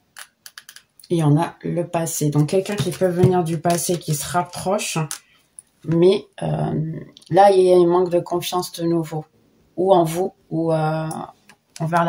Il y en a le passé. Donc, quelqu'un qui peut venir du passé, qui se rapproche, mais là, il y a un manque de confiance de nouveau. Ou en vous, ou envers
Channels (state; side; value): identical; both; correlation 1.00